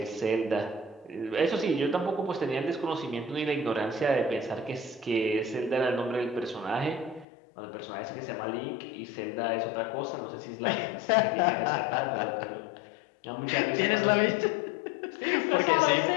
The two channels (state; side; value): drops out; right; at 7.2 s